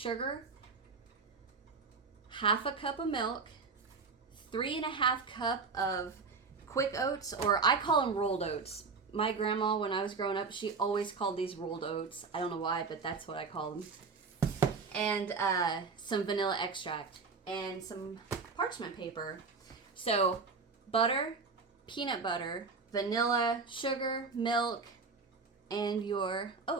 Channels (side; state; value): left; quieter; 4.7 dB